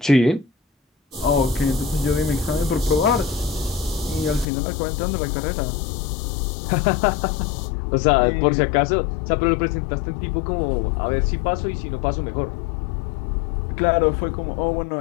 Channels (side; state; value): right; drops out; at 4.5 s